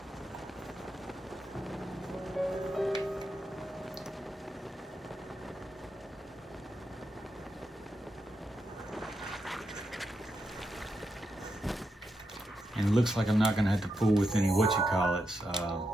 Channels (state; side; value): normal; both; correlation 0.84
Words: And it looks like I'm not going to have to fool with any